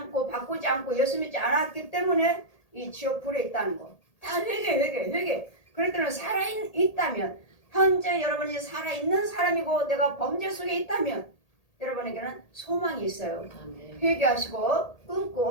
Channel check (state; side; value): late; right; 1.8 ms